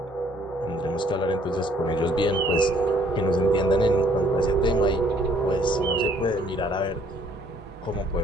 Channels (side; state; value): both; normal; correlation 0.62